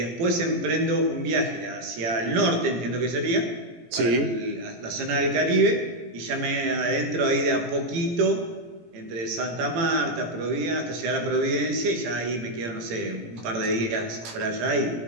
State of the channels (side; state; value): left; late; 17 ms